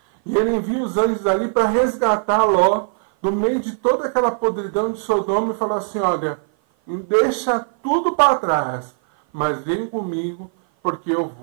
E ele envia os anjos ali para resgatar Ló do meio de toda aquela podridão de Sodoma e falar assim: olha, deixa tudo para trás, mas vem comigo, porque eu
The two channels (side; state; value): left; silent; 56 dB below the other